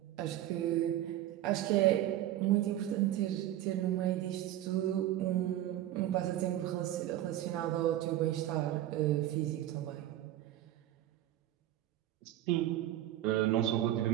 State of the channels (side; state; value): left; quieter; 13.3 dB